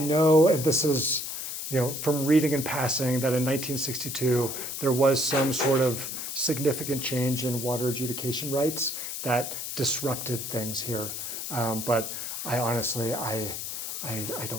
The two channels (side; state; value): left; noise; hiss, 5 dB below the sound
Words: and this is, from reading and passing, that in 1962 there was some sort of significant change in water adjudication rights that disrupted things here. But I honestly, I